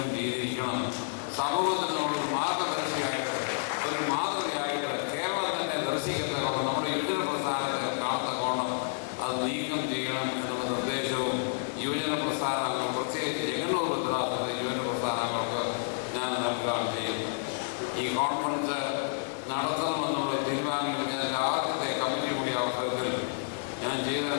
ചെയ്തിരിക്കണം. സമൂഹത്തിന് നമ്മളൊരു മാർഗദർശിയായിട്ട് ഒരു മാതൃകയായിട്ട് കേരളം തന്നെ ദർശിക്കത്തക്കോണം നമ്മുടെ യുവജന പ്രസ്ഥാനത്തെ കാണത്തക്കോണം അത് നീക്കം ചെയ്യണം എന്നുള്ള നിർദ്ദേശവും യുവജന പ്രസ്ഥാനങ്ങൾ പ്രത്യേകിച്ച് ചെങ്ങന്നൂർ ഭദ്രാസനത്തിലെ യുവജന പ്രസ്ഥാനങ്ങൾക്ക് ഞാൻ നൽകുകയാണ് ചെയ്യുന്നത്. ഈ കോൺഫറൻസ് നടത്തണമെന്നുള്ള തീരുമാനം ഞാൻ ആദ്യത്തെ കമ്മിറ്റി കൂടിയ അവസരത്തിൽ ഞാൻ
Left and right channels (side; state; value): right; silent; 58 dB below the other